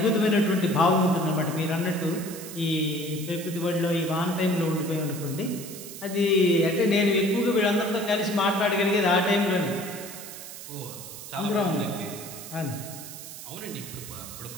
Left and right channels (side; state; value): right; noise; hiss, 12 dB below the sound